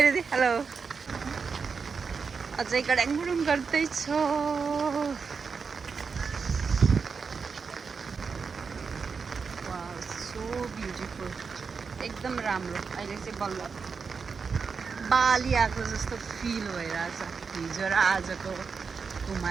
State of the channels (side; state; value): left; quieter; 5.4 dB